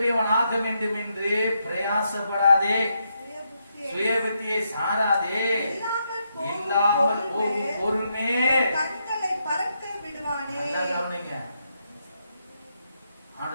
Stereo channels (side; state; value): both; inverted; correlation -0.80